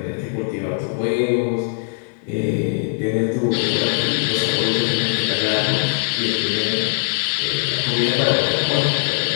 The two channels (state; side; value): silent; right; digital silence